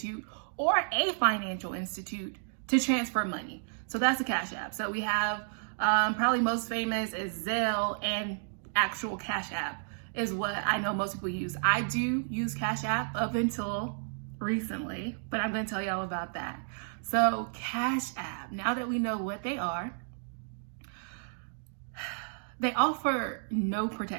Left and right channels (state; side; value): silent; left; digital silence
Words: or a financial institute to transfer money. So that's a cash app. So we have probably most famous is Zelle, and actual Cash App is what I know most people use. I do use Cash App up until recently, but I'm going to tell y'all about that. So Cash App, now that we know what they are, they offer no